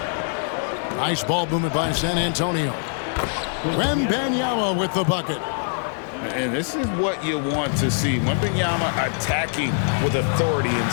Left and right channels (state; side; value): silent; right; 57 dB below the other